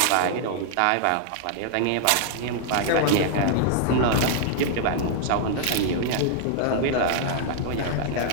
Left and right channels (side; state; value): both; different; correlation -0.01